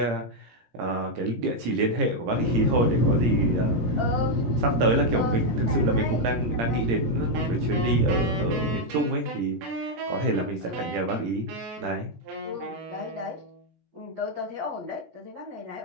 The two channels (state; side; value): late; left; 17 ms